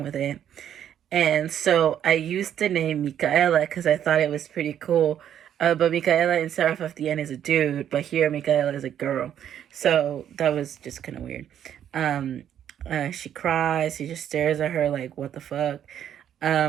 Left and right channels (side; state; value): left; quieter; 9.9 dB